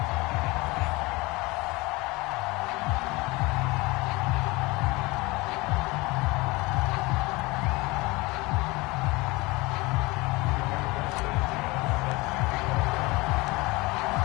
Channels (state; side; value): quieter; right; 23.2 dB